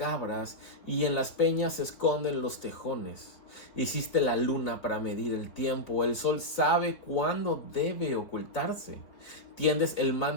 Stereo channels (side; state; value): right; late; 3.8 ms